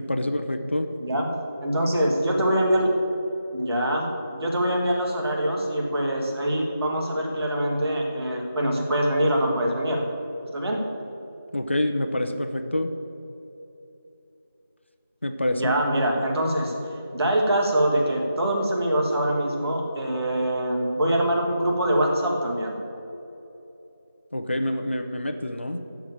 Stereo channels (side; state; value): both; inverted; correlation -0.81